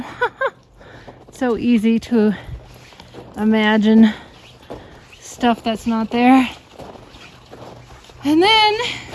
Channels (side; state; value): both; identical; correlation 1.00